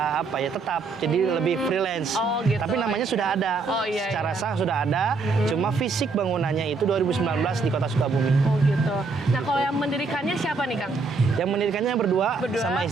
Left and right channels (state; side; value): quieter; left; 4.2 dB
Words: apa ya, tetap. Jadi lebih freelance. Oh, gitu. Tapi namanya sudah ada. Oh, iya, Secara iya. sah sudah ada. Cuma fisik bangunannya itu 2019 di Kota Sukabumi. Oh gitu. Nah, kalau yang mendirikannya siapa nih, Kang? Yang mendirikannya berdua sama